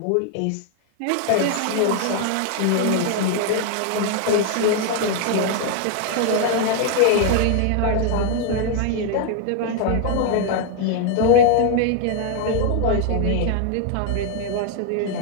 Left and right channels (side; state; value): both; different; correlation 0.00